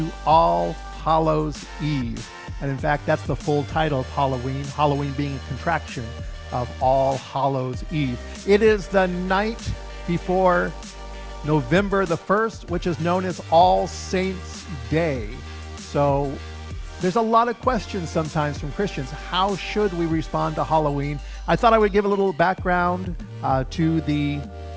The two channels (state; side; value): identical; both; correlation 1.00